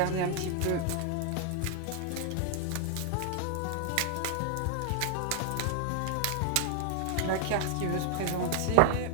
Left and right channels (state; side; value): different; both; correlation 0.00